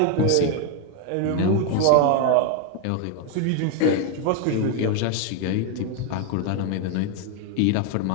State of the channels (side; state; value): both; different; correlation 0.01